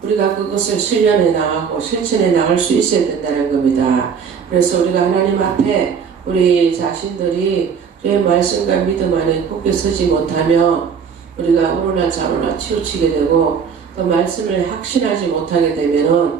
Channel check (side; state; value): left; quieter; 6.6 dB